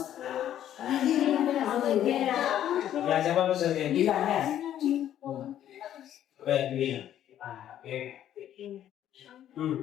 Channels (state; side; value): quieter; right; 11.2 dB